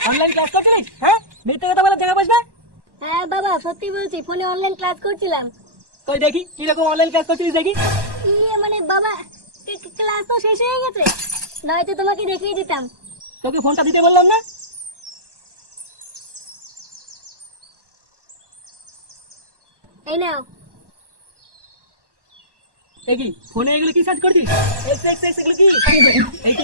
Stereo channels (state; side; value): late; left; 1.1 ms